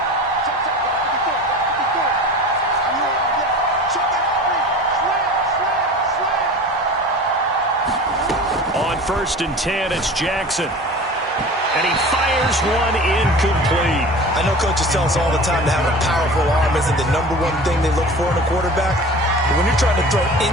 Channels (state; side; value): normal; both; correlation 0.38